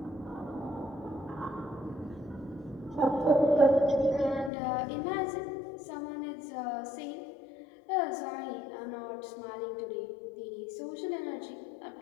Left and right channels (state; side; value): drops out; right; at 4.5 s